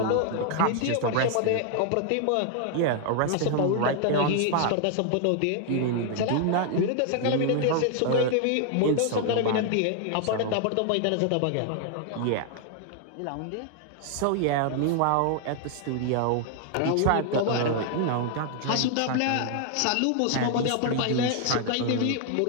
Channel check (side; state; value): both; different; correlation 0.00